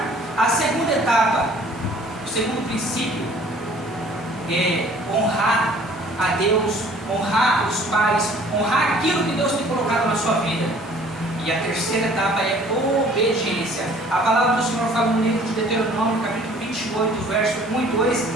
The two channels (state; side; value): normal; both; correlation 0.53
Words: A segunda etapa, o segundo princípio, é honrar a Deus, honrar os pais, honrar aquilo que Deus tem colocado na sua vida. E a terceira etapa é obediência. A palavra do Senhor fala no livro de Deuteronômio, capítulo 28, verso 1 e 2,